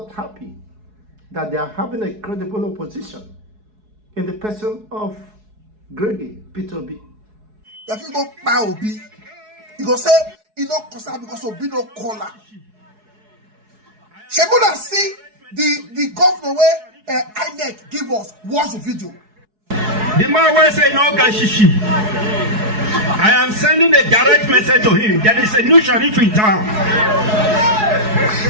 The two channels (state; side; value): late; left; 4.7 ms